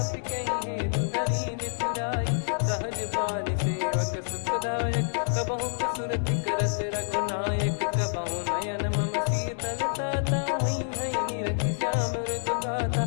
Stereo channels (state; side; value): silent; right; digital silence